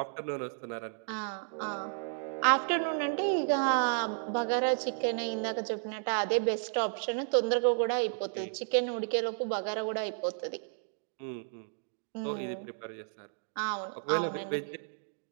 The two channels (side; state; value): left; silent; digital silence